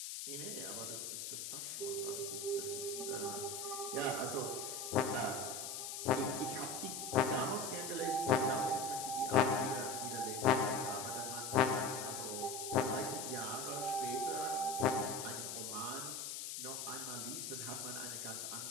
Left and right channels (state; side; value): noise; left; hiss, 5 dB below the sound